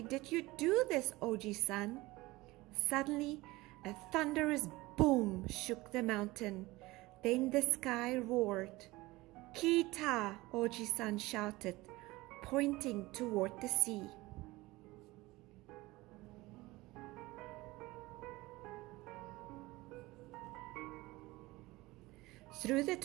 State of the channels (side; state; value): left; quieter; 20.3 dB